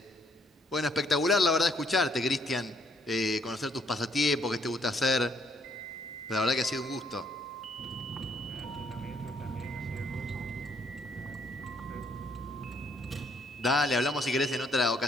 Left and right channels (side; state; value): both; normal; correlation 0.67